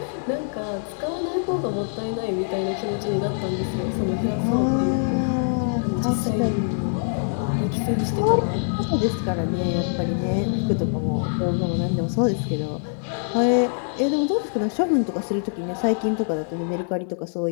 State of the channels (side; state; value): right; silent; 55 dB below the other